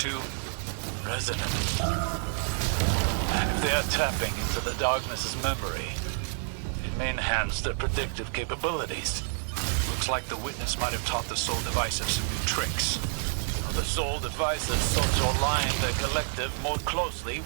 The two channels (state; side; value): silent; left; 59 dB below the other